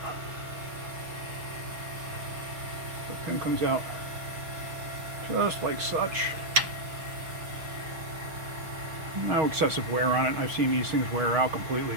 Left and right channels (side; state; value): left; late; 6.2 ms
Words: The pin comes out just like such. No excessive wear on it. I've seen these things wear out completely